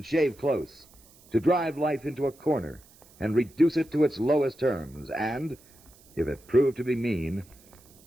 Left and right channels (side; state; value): right; noise; hiss, 27 dB below the sound